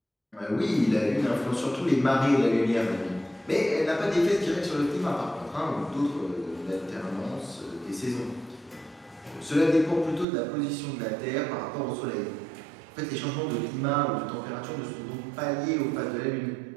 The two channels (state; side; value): drops out; left; at 10.2 s